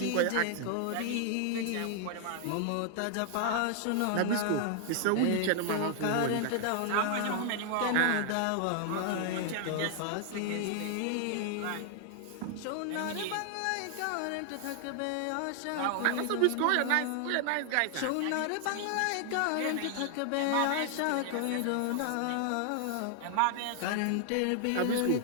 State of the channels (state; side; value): different; both; correlation 0.00